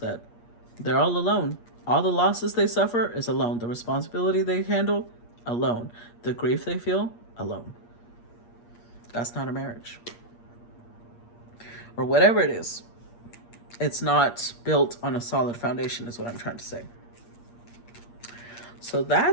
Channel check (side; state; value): right; late; 8.5 ms